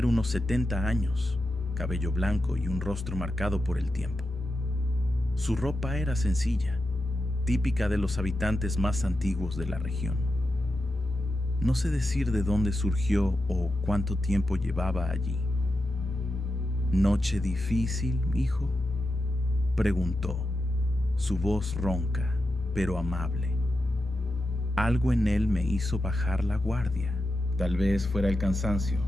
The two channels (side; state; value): left; noise; hum, 28 dB below the sound